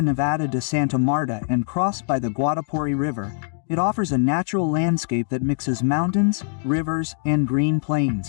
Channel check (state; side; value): silent; right; digital silence